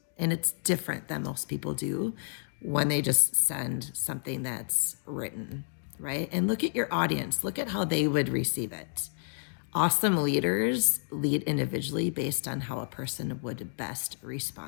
And it's different than most people do when they just send something that's written, right? And look at your audience. Look at how they would receive it. Awesome leaders lead individually based on how a person would best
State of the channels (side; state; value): right; silent; 58 dB below the other